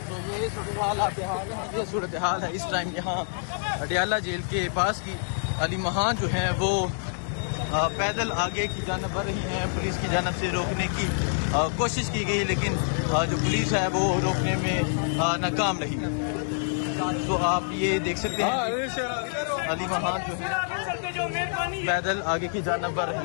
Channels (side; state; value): right; silent; digital silence